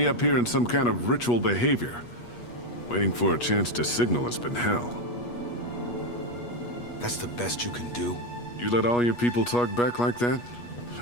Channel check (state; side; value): late; right; 8.3 ms